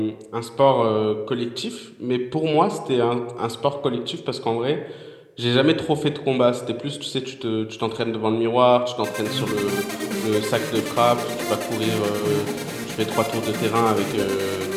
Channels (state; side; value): identical; both; correlation 1.00